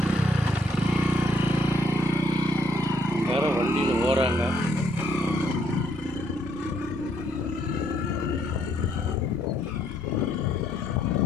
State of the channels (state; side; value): normal; both; correlation 0.69